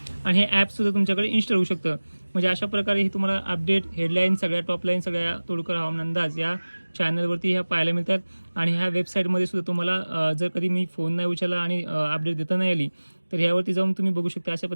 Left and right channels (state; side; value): inverted; both; correlation -1.00